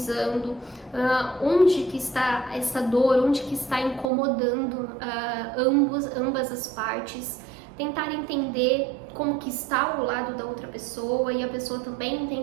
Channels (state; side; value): drops out; left; at 4.1 s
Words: onde que está essa dor, onde que está incomodando ambas as partes, tentar entender como que está o lado da outra pessoa e a pessoa também